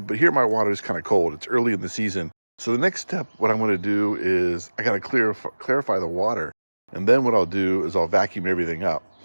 here my water is kind of cold. It's early in the season. So the next step, what I'm going to do is I got to clarify the water. And then what I'll do is I'll vacuum everything up.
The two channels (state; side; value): inverted; both; correlation -1.00